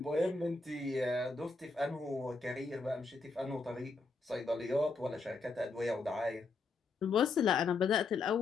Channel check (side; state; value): right; quieter; 3.9 dB